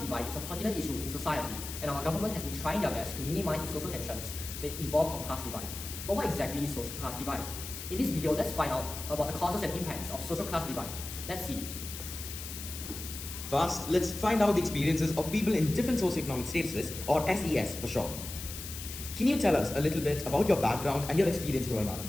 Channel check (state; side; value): noise; left; hiss, 9 dB below the sound